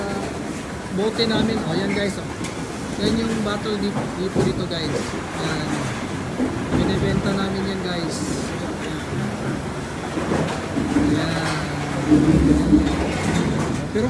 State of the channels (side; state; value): both; identical; correlation 1.00